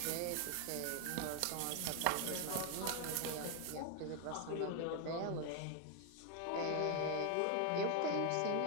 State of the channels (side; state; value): both; different; correlation 0.01